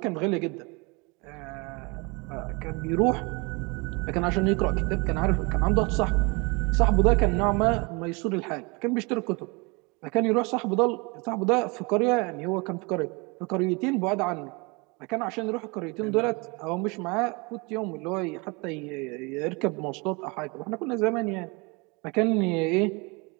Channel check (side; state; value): left; quieter; 28.5 dB